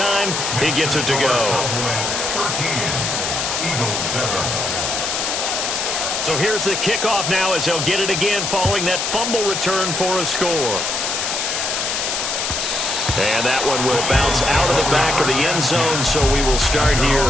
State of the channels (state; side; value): noise; left; hiss, 1 dB below the sound